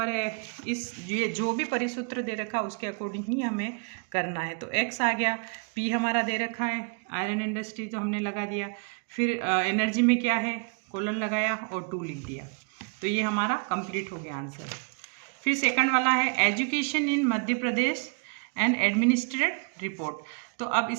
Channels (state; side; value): quieter; left; 37.0 dB